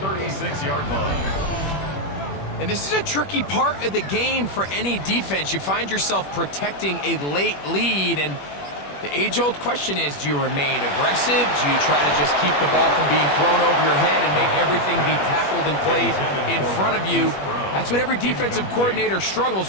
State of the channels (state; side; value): late; right; 21 ms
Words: line. And this is a tricky part of the game for any defense. You find yourself protecting a late lead, and the age-old question is, do you remain aggressive? Do you try to just keep the ball from being thrown over your head and make everything be tackled and played in front of you? That's what every defensive coordinator